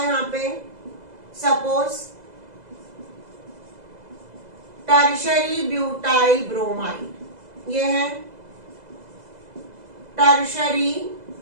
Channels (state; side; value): late; left; 2.0 ms